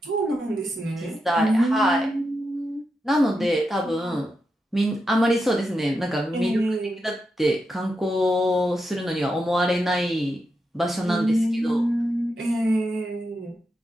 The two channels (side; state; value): both; normal; correlation 0.86